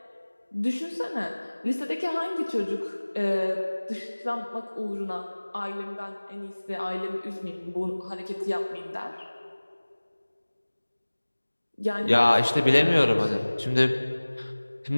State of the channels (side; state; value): both; inverted; correlation -1.00